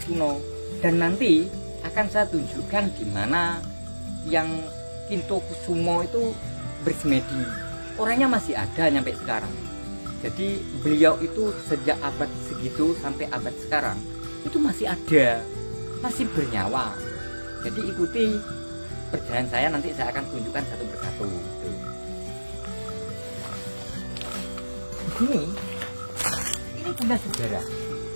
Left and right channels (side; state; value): both; inverted; correlation -1.00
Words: kuno. Dan nanti akan saya tunjukkan gimana Yang Kinto Kusumo itu bersemedi. Orangnya masih ada sampai sekarang. Jadi beliau itu sejak abad segitu sampai abad sekarang itu masih ada, masih bernyawa. Jadi ikuti perjalanan saya, nanti saya akan tunjukkan satu persatu. Di sini, ini punya sejarah.